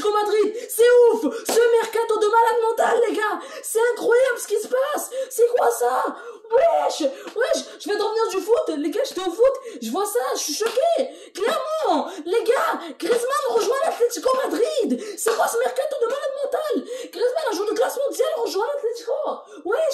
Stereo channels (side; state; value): both; identical; correlation 1.00